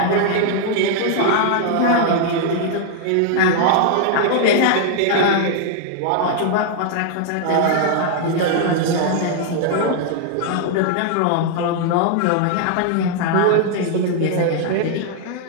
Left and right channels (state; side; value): different; both; correlation 0.00